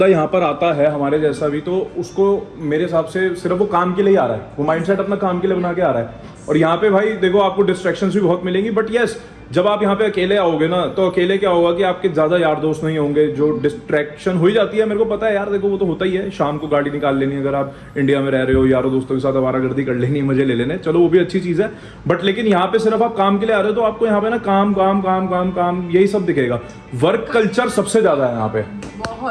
यहाँ पर आता है हमारे जैसा भी, तो उसको मेरे हिसाब से सिर्फ वो काम के लिए आ रहा है, वो माइंडसेट अपना काम के लिए बना के आ रहा है। और यहाँ पे भाई देखो आपको डिस्ट्रैक्शंस भी बहुत मिलेंगी, बट यस जब आप यहाँ पे अकेले आओगे ना तो अकेले क्या होगा कि आपके ज्यादा यार दोस्त नहीं होंगे, जो डिस्ट्रैक्शन हो ही जाती है, मेरे को पता है यार, देखो वो तो होता ही है। शाम को गाड़ी निकाल लेनी अगर आप इंडिया में रह रहे हो, यारों दोस्तों के साथ आवारागर्दी कर लेनी, मजे ले लेने, चलो वो भी अच्छी चीज है। बट लेकिन यहाँ पे सिर्फ आप काम के लिए आ रहे हो तो आपको यहाँ पे ना काम काम काम काम काम यही सब दिखेगा। वर्क कल्चर सबसे ज्यादा है यहाँ पे,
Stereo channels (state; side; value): identical; both; correlation 1.00